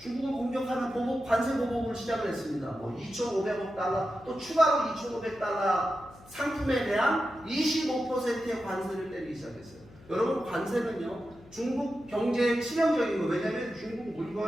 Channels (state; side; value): noise; left; hum, 23 dB below the sound